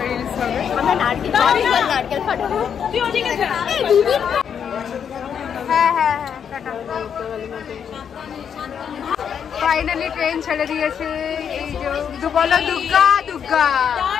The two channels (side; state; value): right; quieter; 7.8 dB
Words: রিলিজ হবে। হ্যাঁ হ্যাঁ হ্যাঁ, ফাইনালি ট্রেন ছেড়ে দিয়েছে। এই যে বলো দুর্গা দুর্গা।